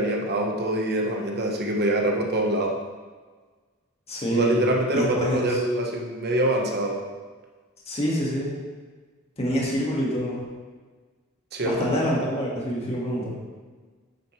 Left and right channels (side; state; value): both; normal; correlation 0.31